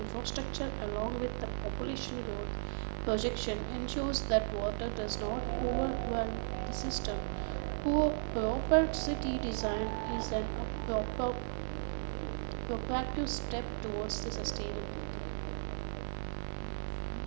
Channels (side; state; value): left; silent; digital silence